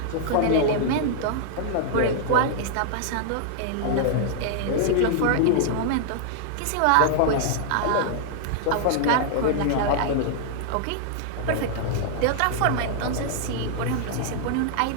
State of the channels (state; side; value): different; both; correlation -0.01